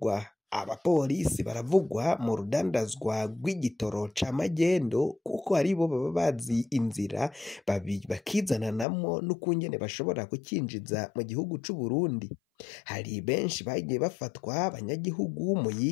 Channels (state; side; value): drops out; right; at 8.8 s